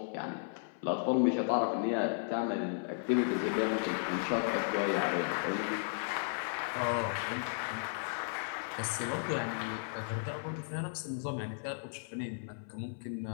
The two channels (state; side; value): silent; right; 55 dB below the other